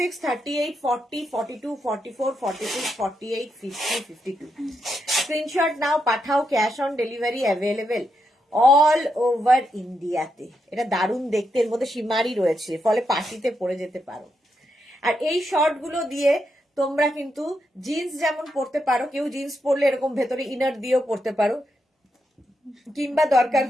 38, 40, 42, 44, 46, 48, 50, 52। স্ক্রিনশট নাও, পাঠাও, cash on delivery available all over ইন্ডিয়াতে। এটা দারুণ দেখতে, এর মধ্যে সীমারি রয়েছে, ফলে পার্টিতে পরে যেতে পারো। আর এই শর্ট গুলো দিয়ে তোমরা কিন্তু জিন্স যেমন পরতে পারো, কেউ জিন্স পরলে এরকম ভেতরে ইনার দিয়েও পরতে পারো, কিংবা দরকার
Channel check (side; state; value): both; normal; correlation 0.82